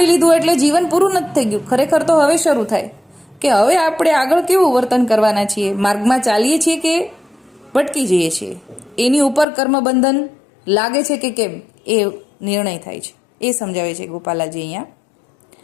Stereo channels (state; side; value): drops out; right; at 9.5 s